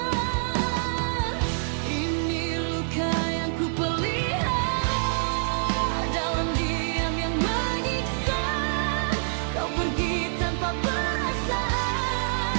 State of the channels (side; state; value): left; silent; 61 dB below the other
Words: Ini luka yang ku pelihara dalam diam yang menyiksa. Kau pergi tanpa